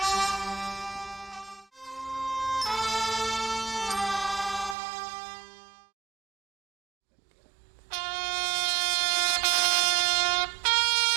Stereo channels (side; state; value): left; drops out; at 4.8 s